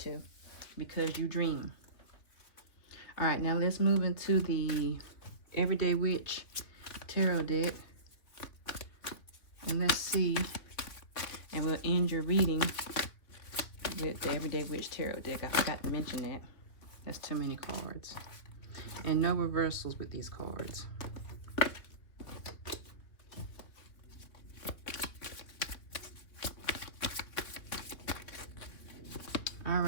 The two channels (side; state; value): right; late; 3.0 ms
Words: because you dream. All right, now let's move into the Everyday Witch Tarot deck. And let's see. And we'll end your reading with the Everyday Witch Tarot deck. I forgot to mention that. That's too many cards. And no reversals with these cards. All